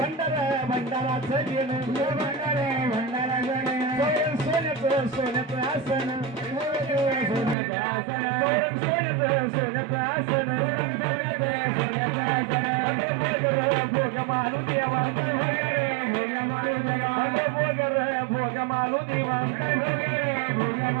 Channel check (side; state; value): left; drops out; at 7.6 s